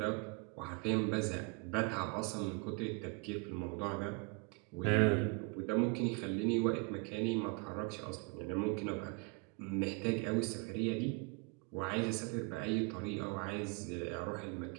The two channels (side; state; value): left; quieter; 31.8 dB